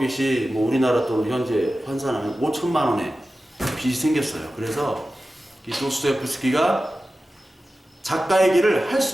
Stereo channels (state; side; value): normal; both; correlation 0.94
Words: 뭐 우리나라 돈 현재 환산하면 5천만 원의 빚이 생겼어요. 그래서 이 도스토옙스키가 작가의 길을 할